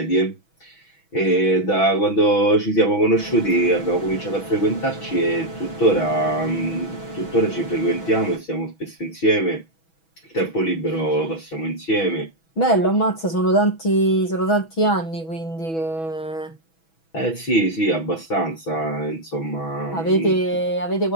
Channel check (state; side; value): late; right; 6.2 ms